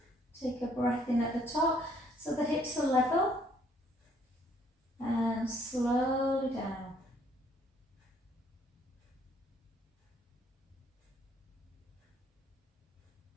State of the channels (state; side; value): normal; both; correlation 0.65